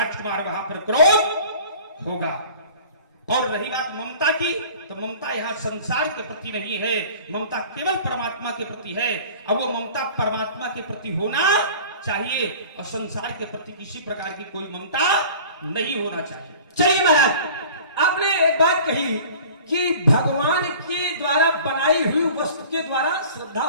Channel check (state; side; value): inverted; both; correlation -0.44